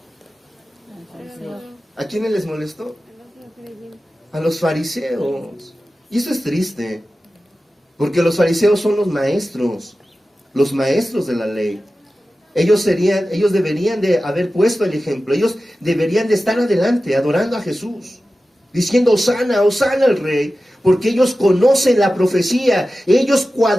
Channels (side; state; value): both; normal; correlation 0.94